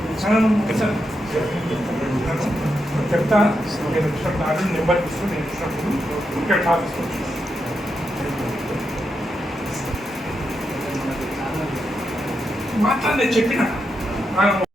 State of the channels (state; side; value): normal; both; correlation 0.85